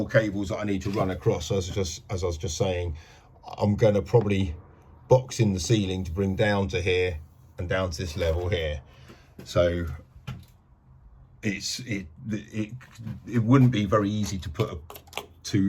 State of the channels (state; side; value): identical; both; correlation 1.00